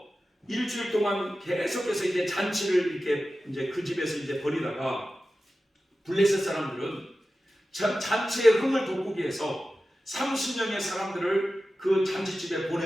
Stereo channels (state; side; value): normal; both; correlation 0.94